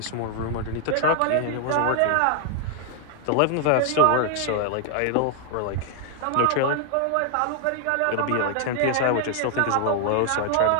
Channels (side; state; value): both; different; correlation 0.00